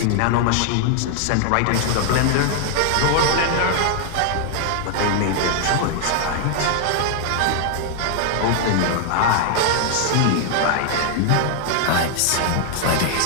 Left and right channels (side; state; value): both; different; correlation 0.00